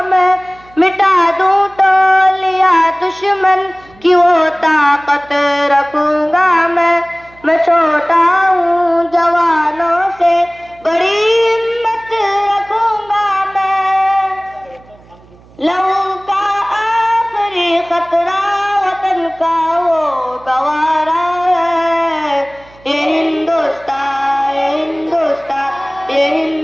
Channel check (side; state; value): right; noise; hum, 26 dB below the sound